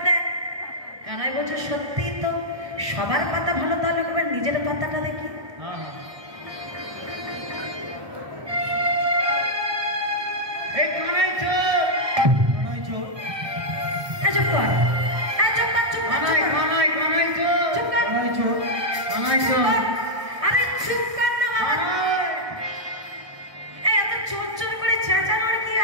দেখ। কানাই বলছে সত্যি তো, সবার পাতা ভালো, তাহলে একবার নিজের পাতাটা দেখি।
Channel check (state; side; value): late; left; 1.2 ms